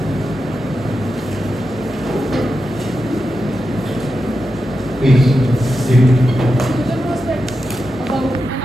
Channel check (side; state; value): both; normal; correlation 0.89